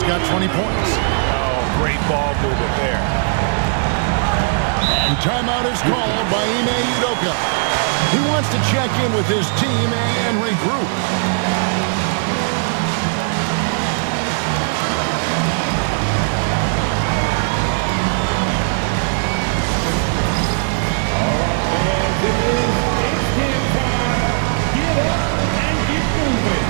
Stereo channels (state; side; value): silent; left; digital silence